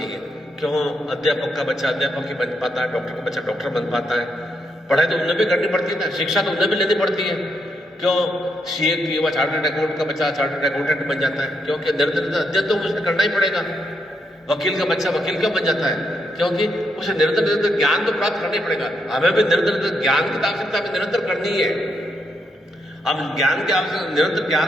क्यों अध्यापक का बच्चा अध्यापक ही बन पाता है, डॉक्टर का बच्चा डॉक्टर बन पाता है। पढ़ाई तो उन्हें भी करनी पड़ती है ना, शिक्षा तो उन्हें भी लेनी पड़ती है। क्यों सीए की वह चार्टर्ड अकाउंटेंट का बच्चा चार्टर्ड अकाउंटेंट बन जाता है? क्योंकि निरंतर अध्ययन तो उसे करना ही पड़ेगा। वकील का बच्चा वकील क्यों बन जाता है? क्योंकि उसे निरंतर निरंतर ज्ञान तो प्राप्त करना ही पड़ेगा। हमें भी निरंतर ज्ञान की आवश्यकता भी निरंतर करनी है। हम ज्ञान के आवश्यक निरंतर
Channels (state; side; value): normal; both; correlation 0.79